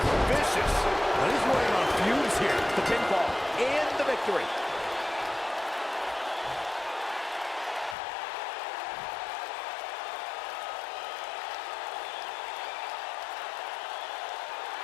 vicious. Now he's running on fumes here. The pinfall and the victory.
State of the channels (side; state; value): right; drops out; at 8.0 s